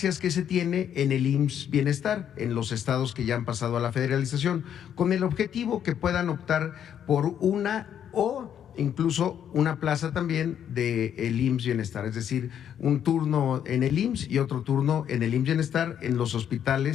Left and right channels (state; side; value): quieter; right; 9.3 dB